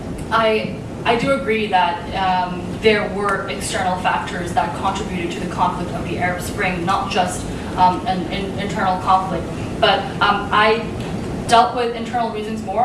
I do agree that there were external factors that contributed to the conflict of the Arab Spring, not just an internal conflict. But I dealt with internal reasons more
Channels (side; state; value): both; identical; correlation 1.00